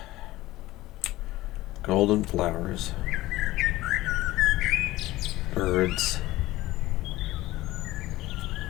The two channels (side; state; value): right; quieter; 17.4 dB